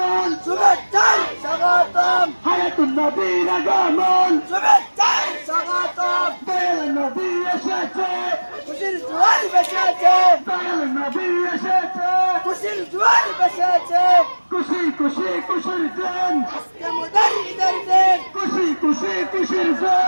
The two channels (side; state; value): both; inverted; correlation -1.00